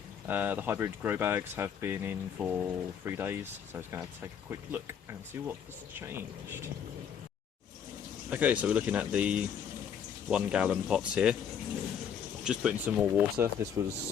hybrid grow bags have been in for 3 days. So I was going to take a quick look and see what has changed. Okay, so we're looking at the 1 gallon pots here. I've just put in some more water.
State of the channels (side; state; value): right; quieter; 8.0 dB